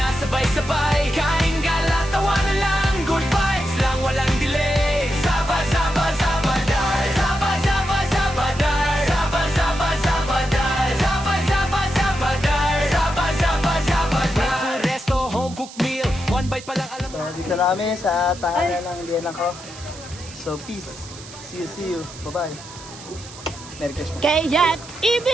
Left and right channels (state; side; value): noise; right; hiss, 16 dB below the sound